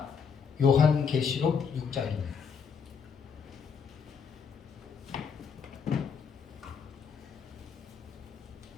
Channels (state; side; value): quieter; right; 6.3 dB